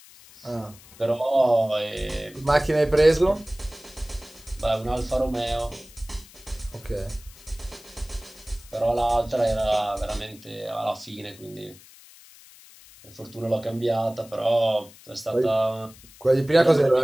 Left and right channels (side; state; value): left; noise; hiss, 22 dB below the sound